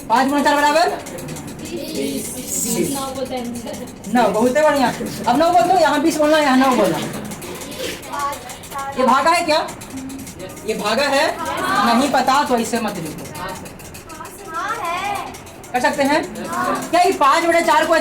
5 × 4 बराबर 9। बहुत है बढ़िया। अब 9 बोल दो, यहाँ 20 बोलना, यहाँ 9 बोलना। ये भागा है क्या? ये भागा है? नहीं पता तो इससे मत लिखो। कर सकते हैं क्या? ये 5/4 को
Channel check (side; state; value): both; identical; correlation 1.00